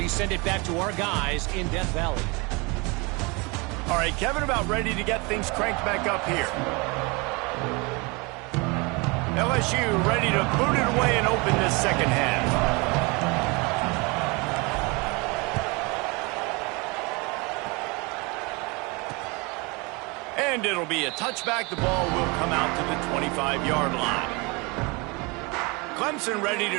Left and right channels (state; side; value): quieter; left; 27.8 dB